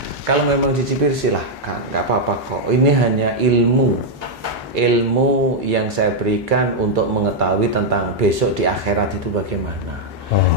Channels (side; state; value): both; normal; correlation -0.02